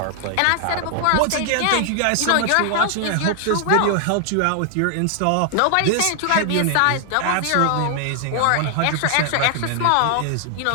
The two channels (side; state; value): both; different; correlation 0.00